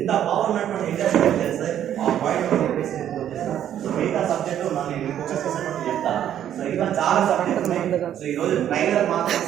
పవర్ ఉన్నటువంటి ఇండస్ట్రీ తెలుస్తుంది. ఆ పాయింట్ చెప్పేసి చేస్తాం. సో మిగతా సబ్జెక్టు నేను ఫోకస్ చేసినప్పుడు చెప్తాను. సో ఇంకా చాలా సబ్జెక్ట్ ఉన్నాయి. సో ఈ రోజు ట్రైలర్ మాత్రం.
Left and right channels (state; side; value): quieter; left; 10.5 dB